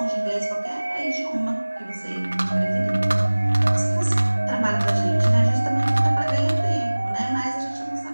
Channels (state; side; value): inverted; both; correlation -1.00